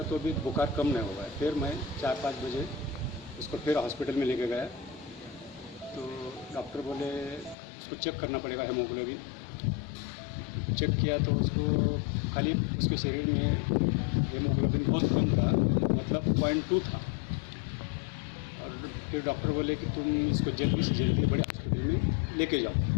तो भी बुखार कम नहीं हुआ। फिर मैं 4-5 बजे उसको फिर हॉस्पिटल में लेके गया। तो डॉक्टर बोले उसको चेक करना पड़ेगा हेमोग्लोबिन। चेक किया तो उसको खाली उसके शरीर में हेमोग्लोबिन बहुत कम था, मतलब 0.2 था। और फिर डॉक्टर बोले कि तुम इसको जल्दी से जल्दी बड़े हॉस्पिटल में लेके जाओ,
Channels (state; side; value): drops out; right; at 7.6 s